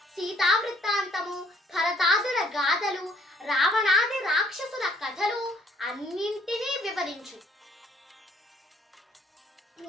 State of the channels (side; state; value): both; normal; correlation 0.63